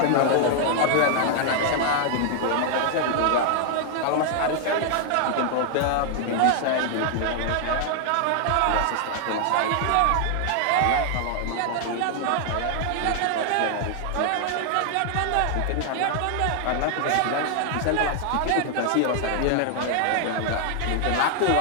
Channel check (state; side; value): different; both; correlation 0.00